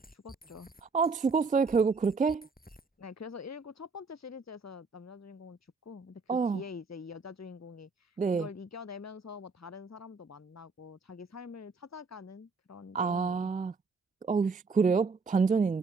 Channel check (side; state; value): left; quieter; 4.5 dB